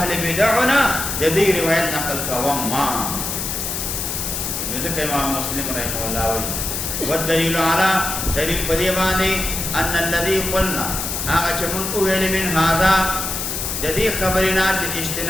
بدعونه د دې روایت نقل کوم ما نو ځکه امام مسلم رحمه الله وایي والدلیل علی دلیل په دې باندې ان الذي قلنا هغه چې موږ ویل من هذا د دې خبرنا چې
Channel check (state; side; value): noise; left; hiss, 3 dB below the sound